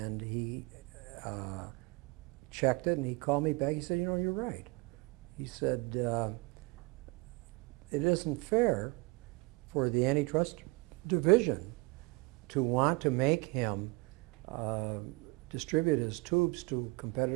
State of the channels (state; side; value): quieter; left; 26.2 dB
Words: he checked it, and he called me back. He said, "You know, you're right." He said, "It isn't fair for the antitrust division to want to make him distribute his tubes to